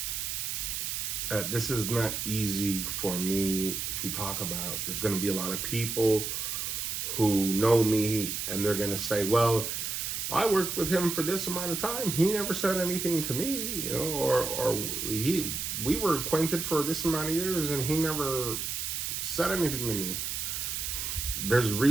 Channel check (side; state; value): right; noise; hiss, 3 dB below the sound